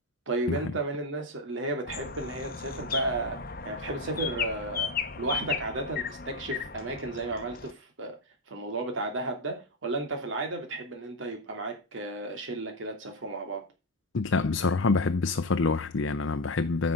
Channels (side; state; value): both; normal; correlation 0.11